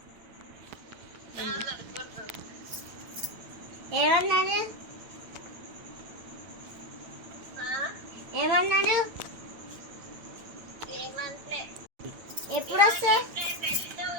ఏమన్నాడు? ఏమన్నాడు? ఎప్పుడు వస్తే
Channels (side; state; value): left; late; 8.9 ms